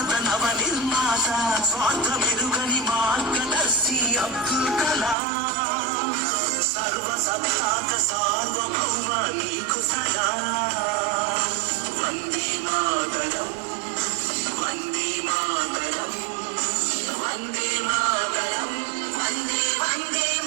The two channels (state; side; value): drops out; left; at 5.2 s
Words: నవ నిర్మాత స్వార్థ మెరుగని మార్గదర్శి అబ్దుల్ కలాం. సర్వ సత్తాక సార్వభౌమ నీకు సలాం. వందే మాతరం వందే మాతరం వందే మాతరం వందే వందే